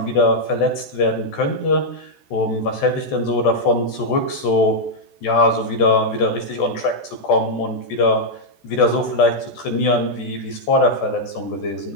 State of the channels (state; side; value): late; right; 14 ms